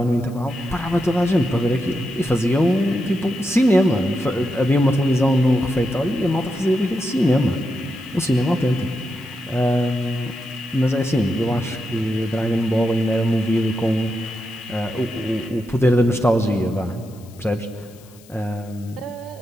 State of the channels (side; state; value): left; noise; hiss, 26 dB below the sound